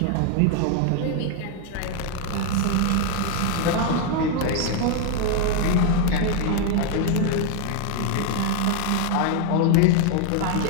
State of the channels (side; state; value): both; different; correlation 0.00